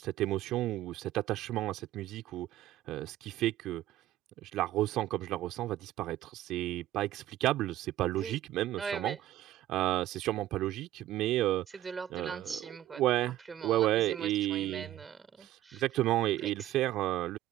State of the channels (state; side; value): quieter; left; 14.0 dB